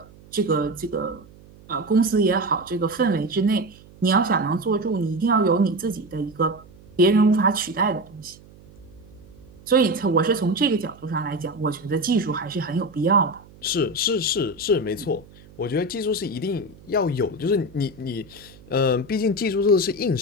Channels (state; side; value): noise; right; hum, 23 dB below the sound